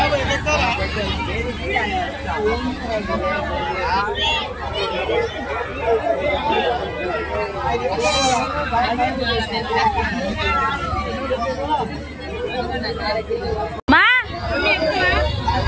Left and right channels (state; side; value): identical; both; correlation 1.00